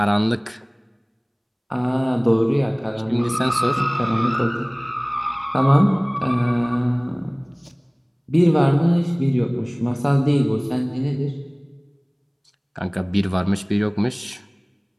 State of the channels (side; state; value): both; identical; correlation 1.00